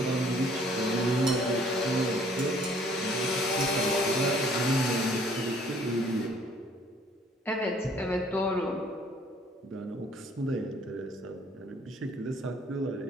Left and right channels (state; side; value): normal; both; correlation 0.59